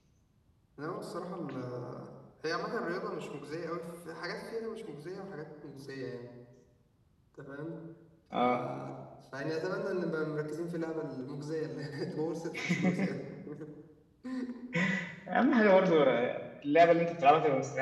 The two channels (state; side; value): identical; both; correlation 1.00